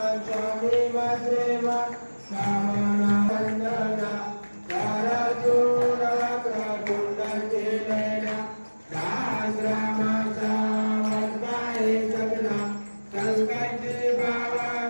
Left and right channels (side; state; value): both; inverted; correlation -1.00